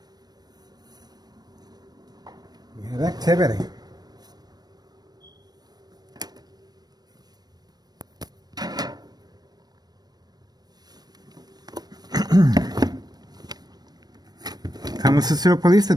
We have activity. Kansas City Police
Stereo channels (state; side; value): late; left; 0.19 ms